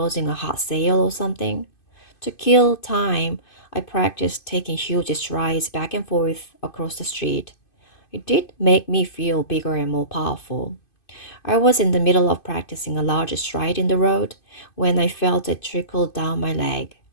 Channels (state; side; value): late; right; 2.5 ms